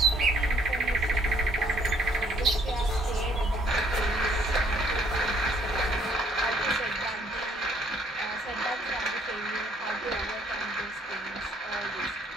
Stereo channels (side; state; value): both; normal; correlation 0.64